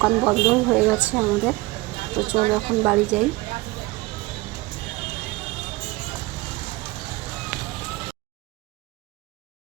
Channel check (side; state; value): left; quieter; 21.4 dB